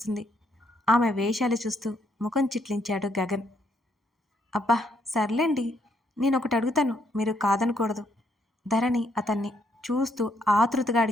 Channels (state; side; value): normal; both; correlation 0.73